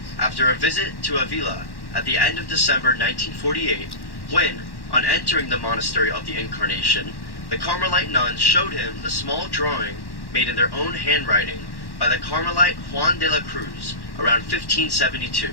after a visit to Avila at the end of December 1948, when, on entering the monastery of the Incarnation, the Carmelite nuns showed him the small drawing made in their own handwriting by the Carmelite Juan de la Cruz around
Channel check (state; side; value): late; right; 1.1 ms